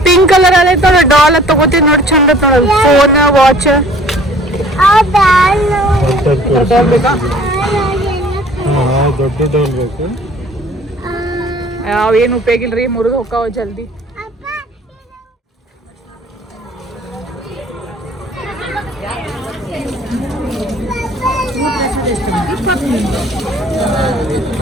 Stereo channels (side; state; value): both; normal; correlation 0.52